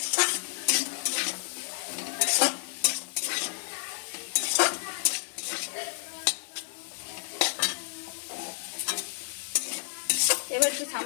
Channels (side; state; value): right; silent; digital silence